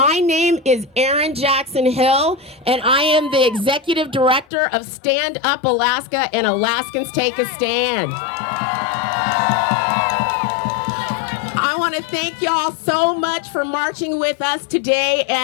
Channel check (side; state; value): right; drops out; at 4.5 s